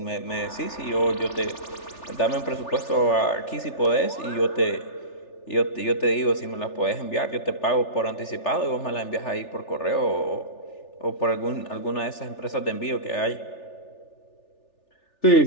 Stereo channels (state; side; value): late; right; 3.4 ms